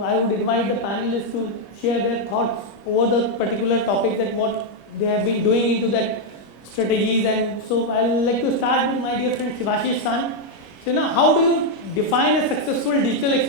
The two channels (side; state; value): right; late; 25 ms